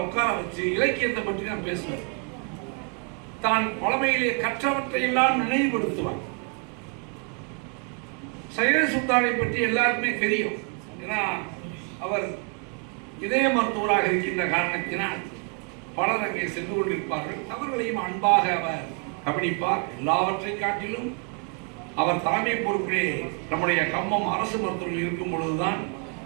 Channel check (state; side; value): quieter; left; 37.9 dB